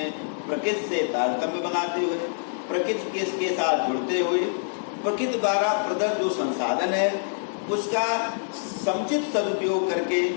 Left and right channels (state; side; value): silent; right; 61 dB below the other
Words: प्रकृति से तारतम्य बनाते हुए, प्रकृति के साथ जुड़ते हुए, प्रकृति द्वारा प्रदत्त जो संसाधन है उसका समुचित सदुपयोग करके